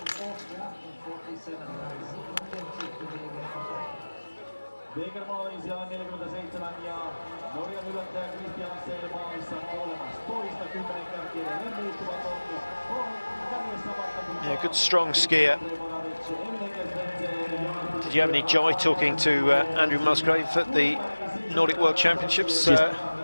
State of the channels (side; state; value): both; inverted; correlation -1.00